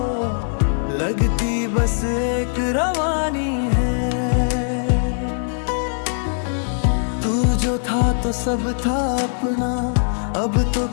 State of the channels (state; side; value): silent; right; digital silence